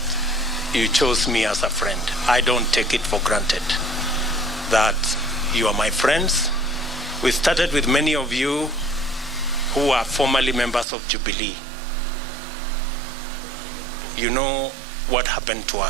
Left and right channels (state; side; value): drops out; left; at 10.9 s